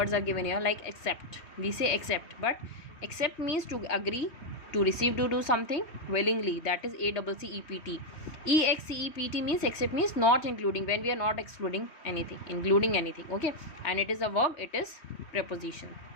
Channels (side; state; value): right; late; 3.1 ms